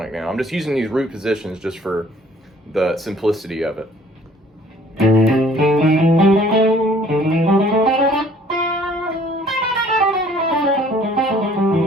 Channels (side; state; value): both; normal; correlation 0.56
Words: now, I'm just using these root positions just for the simplicity of it.